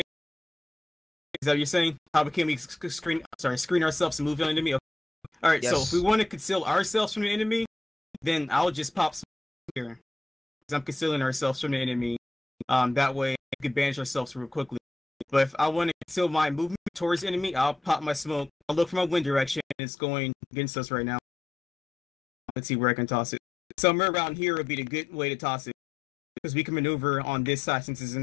Is that what you're saying? How can we screen ourselves and move on the enemy? Okay. All right, Yes. so if we want to conceal ourselves from the enemy, then I'll just pop smoke here. Because I'm concealing ourselves from the enemy. That way we can banish ourselves real quickly. But if I want to conceal my movement towards the enemy, I'll pop my smoke. I'll look for my wind direction, and it's going against us right now. Let's see where I can toss it. Somewhere around here would be the good way to toss it. Because we can maneuver on this side since it's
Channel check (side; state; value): right; drops out; at 19.8 s